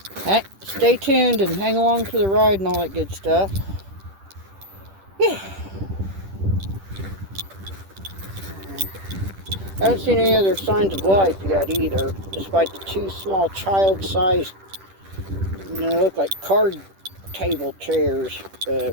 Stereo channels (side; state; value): left; late; 10 ms